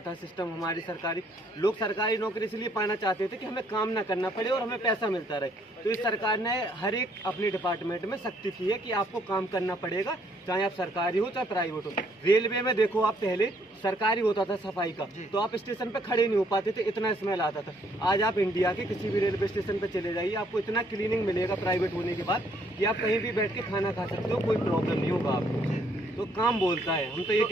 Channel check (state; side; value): normal; both; correlation 0.67